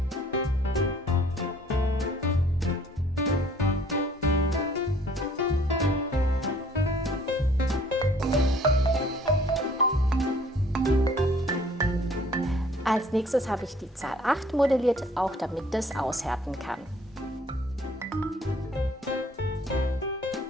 Als nächstes habe ich die Zahl 8 modelliert, auch damit das aushärten kann.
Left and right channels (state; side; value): normal; both; correlation 0.57